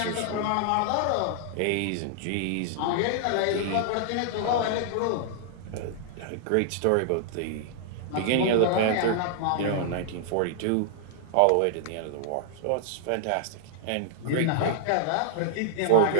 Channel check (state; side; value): different; both; correlation -0.01